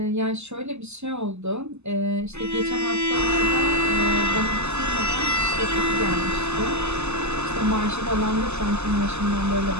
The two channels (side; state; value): left; late; 0.81 ms